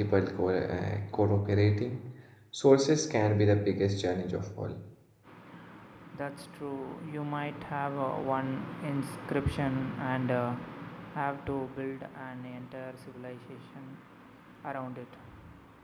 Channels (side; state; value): both; identical; correlation 1.00